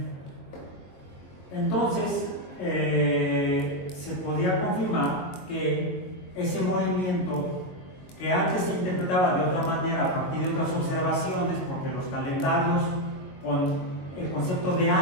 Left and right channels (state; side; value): late; right; 22 ms